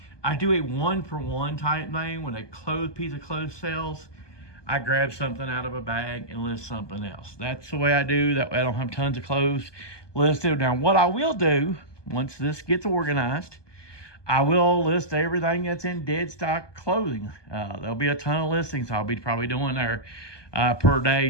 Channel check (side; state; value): right; late; 1.2 ms